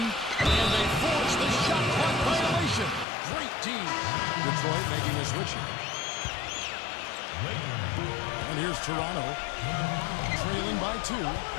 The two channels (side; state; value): right; drops out; at 3.1 s